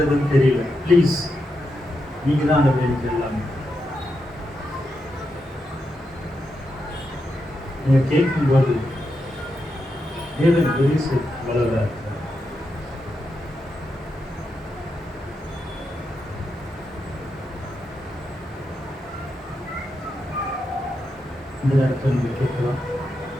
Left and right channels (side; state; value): both; normal; correlation 0.85